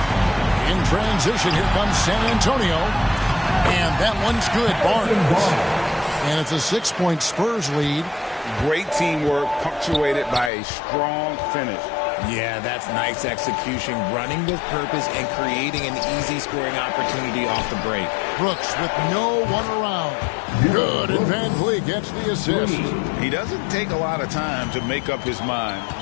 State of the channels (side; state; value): right; drops out; at 10.5 s